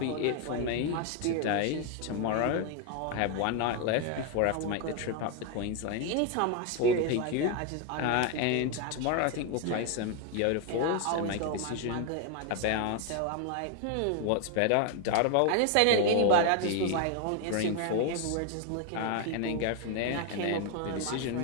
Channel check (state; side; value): different; both; correlation 0.01